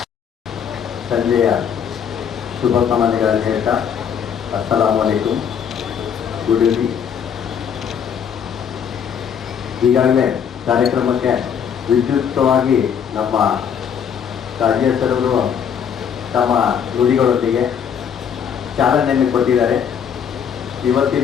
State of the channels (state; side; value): quieter; right; 7.8 dB